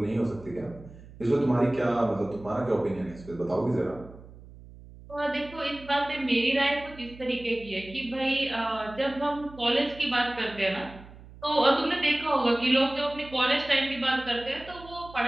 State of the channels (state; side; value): noise; right; hum, 19 dB below the sound